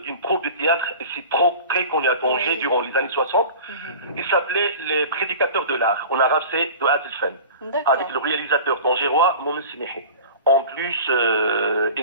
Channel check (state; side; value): inverted; both; correlation -0.38